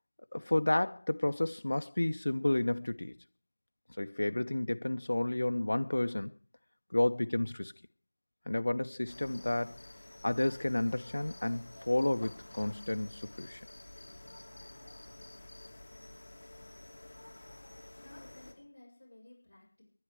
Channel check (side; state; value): both; inverted; correlation -1.00